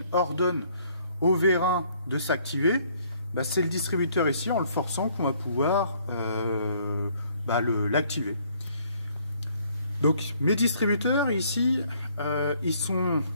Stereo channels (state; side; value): inverted; both; correlation -0.63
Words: ordonne au vérin de s'activer, c'est le distributeur ici, en le forçant, qu'on va pouvoir l'activer. Donc mes distributeurs ici, ils sont